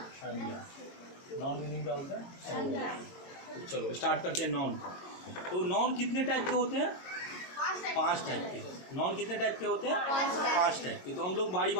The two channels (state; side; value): late; right; 22 ms